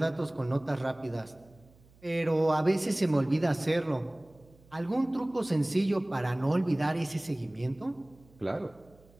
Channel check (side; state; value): right; noise; hum, 28 dB below the sound